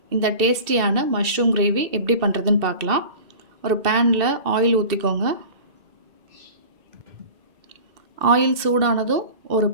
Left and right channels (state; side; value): late; left; 2.7 ms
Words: இந்த டேஸ்டியான மஷ்ரூம் கிரேவி எப்படி பண்ணுறதுன்னு பார்க்கலாம். ஒரு பேனில் ஆயில் ஊற்றிக்கோங்க. ஆயில் சூடானதும் ஒரு